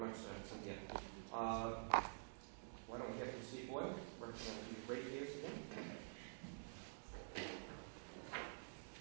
Cynthia. Why don't we hear from Steve Boyle, representing the ratepayers again?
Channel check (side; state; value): left; silent; digital silence